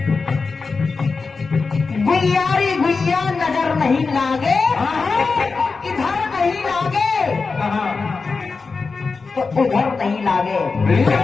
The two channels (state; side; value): quieter; right; 4.5 dB